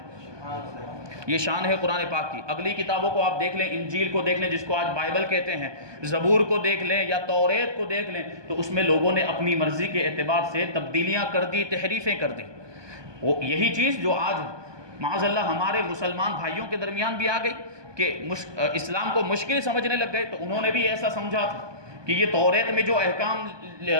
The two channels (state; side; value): late; left; 1.2 ms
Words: یہ شان ہے قرآن پاک کی۔ اگلی کتابوں کو آپ دیکھ لیں، انجیل کو دیکھ لیں جس کو آج بائبل کہتے ہیں، زبور کو دیکھ لیں یا توریت کو دیکھ لیں، تو اس میں لوگوں نے اپنی مرضی کے اعتبار سے تبدیلیاں کر دی، تحریفیں کر دی۔ وہ یہی چیز جو آج معاذ اللہ ہمارے مسلمان بھائیوں کے درمیان بھی آ گئی کہ اسلام کو مشکل سمجھنے لگ گئے، تو انہوں نے بھی ایسا سمجھا تھا کہ یہ توریت میں جو احکام